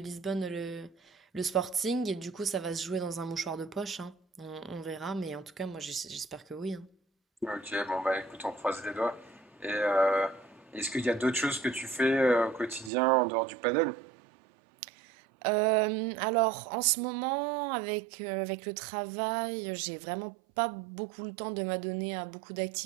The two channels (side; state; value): left; drops out; at 12.9 s